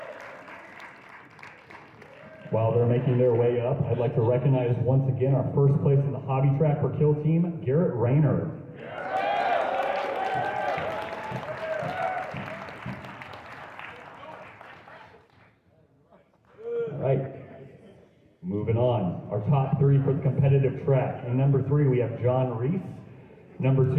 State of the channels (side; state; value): both; identical; correlation 1.00